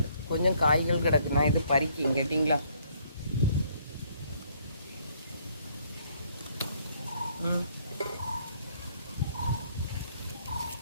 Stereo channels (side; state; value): both; inverted; correlation -0.66